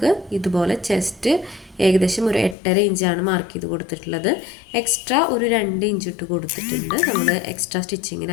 ഇതുപോലെ ചെസ്റ്റ് ഏകദേശം ഒരു 8.5 ഇഞ്ചാണ് മാർക്ക് ചെയ്ത് കൊടുത്തിട്ടുള്ളത്. എക്സ്ട്രാ ഒരു 2 ഇഞ്ച് ഇട്ട് കൊടുത്തിട്ടുണ്ട് നമ്മൾ എക്സ്ട്രാ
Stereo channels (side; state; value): right; drops out; at 2.6 s